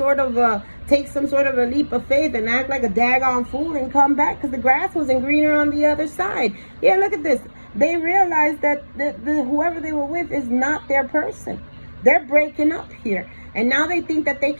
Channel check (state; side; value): inverted; both; correlation -1.00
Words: of take some sort of a leap of faith and act like a daggone fool and come back because the grass wasn't greener on the other side. Yeah, look at this. They realized that whoever they were with is not their person. They're breaking up here. And now they think that they